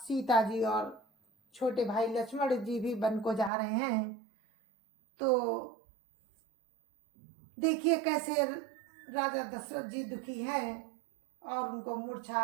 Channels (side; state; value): left; drops out; at 3.5 s